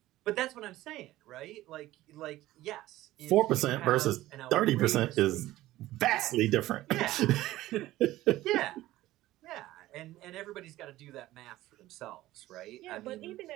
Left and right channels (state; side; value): quieter; left; 16.1 dB